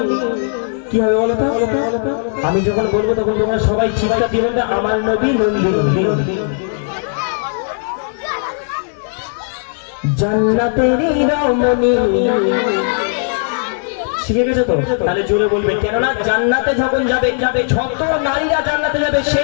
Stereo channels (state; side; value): silent; right; 68 dB below the other